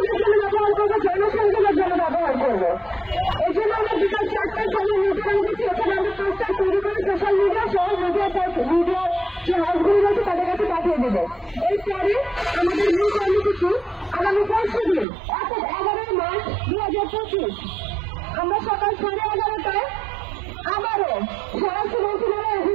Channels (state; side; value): drops out; left; at 15.1 s